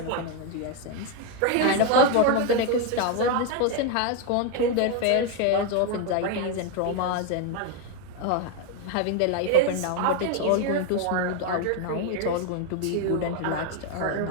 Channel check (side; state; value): both; different; correlation 0.01